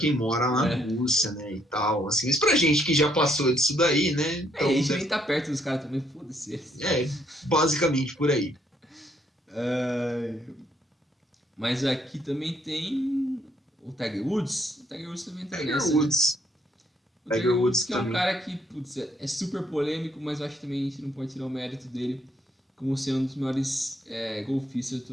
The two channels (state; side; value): normal; both; correlation 0.71